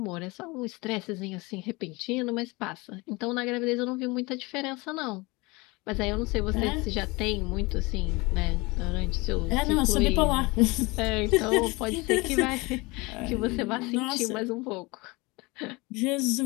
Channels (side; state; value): right; quieter; 24.5 dB